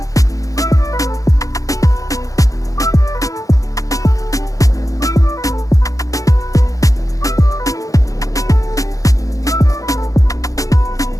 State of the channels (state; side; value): late; right; 0.16 ms